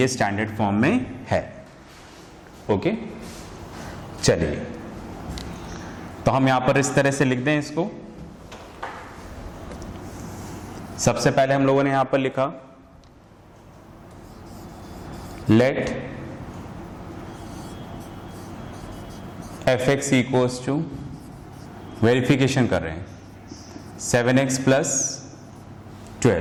स्टैंडर्ड फॉर्म में है। ओके, चलिए तो हम यहां पर इस तरह से लिख दें इसको। सबसे पहले हम लोगों ने यहां पर लिखा let fx equals to, verification कर रहे हैं, 7x +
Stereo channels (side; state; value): both; identical; correlation 1.00